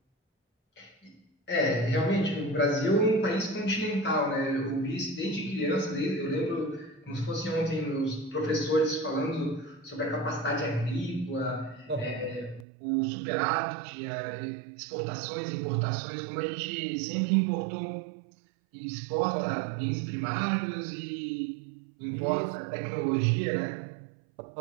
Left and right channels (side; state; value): left; drops out; at 12.7 s